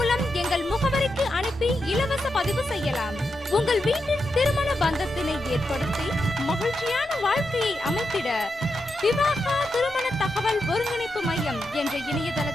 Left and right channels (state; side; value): normal; both; correlation 0.86